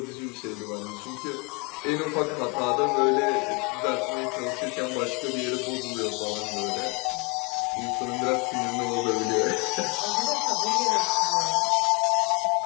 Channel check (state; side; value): quieter; right; 30.9 dB